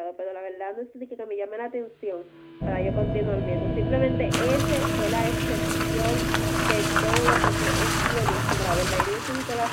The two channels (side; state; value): both; identical; correlation 1.00